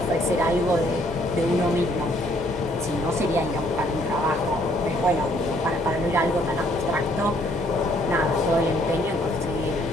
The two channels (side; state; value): both; normal; correlation 0.65